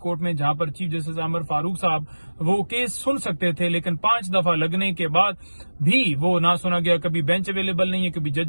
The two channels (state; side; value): inverted; both; correlation -1.00